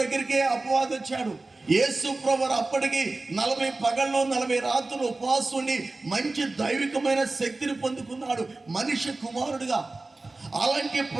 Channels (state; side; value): quieter; left; 3.2 dB